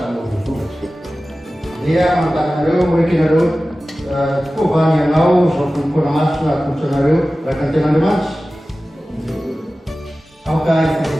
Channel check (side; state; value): both; normal; correlation 0.96